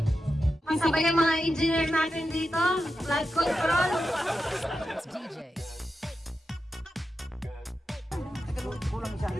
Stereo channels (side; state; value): both; normal; correlation 0.89